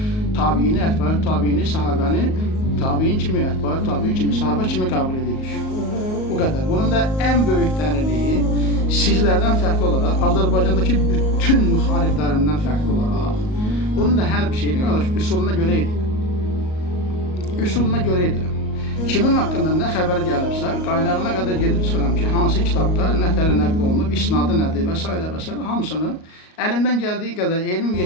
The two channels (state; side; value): late; right; 38 ms